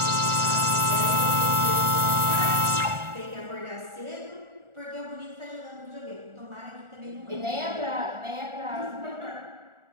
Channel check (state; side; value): late; left; 1.4 ms